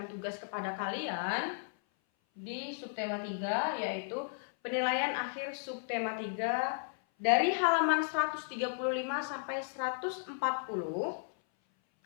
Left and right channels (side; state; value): right; silent; 55 dB below the other